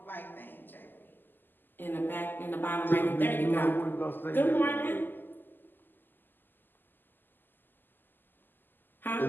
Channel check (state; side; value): late; right; 0.092 ms